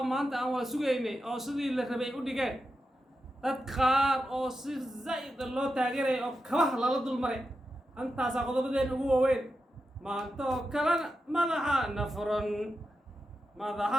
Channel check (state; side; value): normal; both; correlation 0.89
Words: ما أنت أو سويني أو سدي اللي ربي وديكان تدخار أو صير زايد الله تاجره أو كواه لا لدول مري أنت ساقط بدين هو وين ما أنت كلام ماذا نفرن ماذا